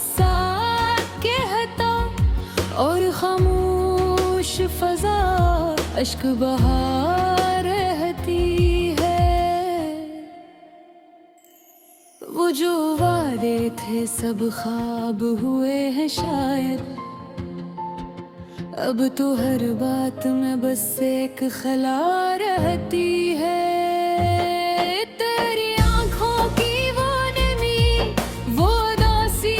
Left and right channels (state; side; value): identical; both; correlation 1.00